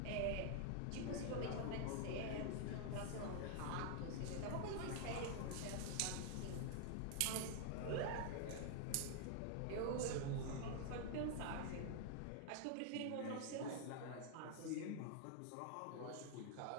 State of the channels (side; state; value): both; different; correlation 0.00